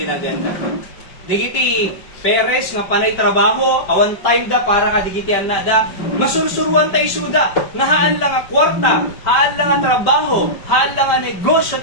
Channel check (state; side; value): late; right; 5.2 ms